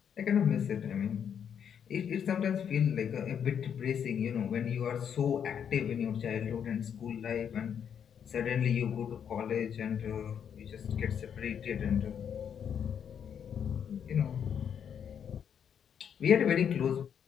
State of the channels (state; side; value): quieter; right; 8.1 dB